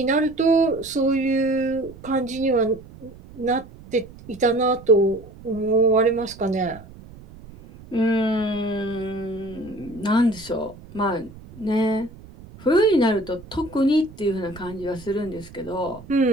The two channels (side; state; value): right; noise; rumble, 19 dB below the sound